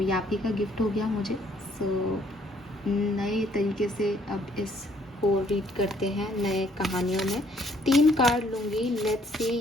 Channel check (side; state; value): both; normal; correlation 0.65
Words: आप ही का गिफ्ट हो गया मुझे। सो नए तरीके से अब इस को रीड करते हैं नए कहानियों में। 3 कार्ड लूँगी, लेट्स सी।